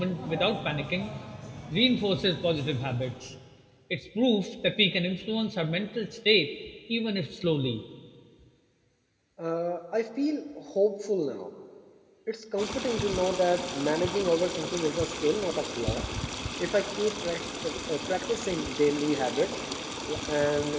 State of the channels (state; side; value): identical; both; correlation 1.00